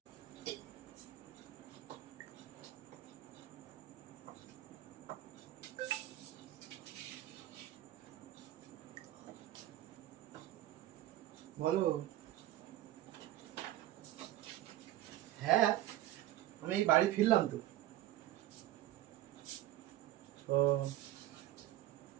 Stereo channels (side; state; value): left; quieter; 14.5 dB